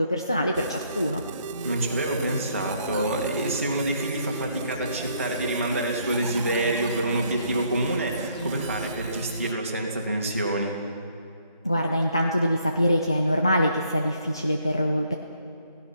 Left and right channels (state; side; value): inverted; both; correlation -0.67